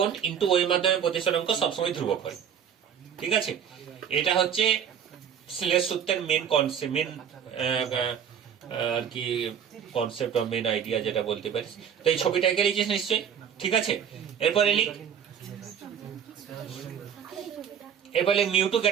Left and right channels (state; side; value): quieter; left; 8.3 dB